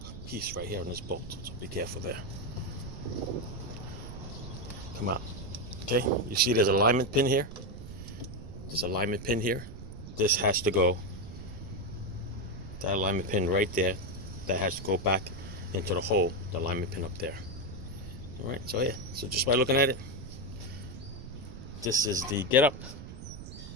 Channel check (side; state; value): right; noise; rumble, 11 dB below the sound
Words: piece right here on this bolt, so be careful there. Come out. Okay, you see there's an alignment pin here? There's an alignment pin here. This has to go, that alignment pin right there, that has to go back into the hole, the alignment pin up there. All right, so yeah, so just by looking at it, this is the get up.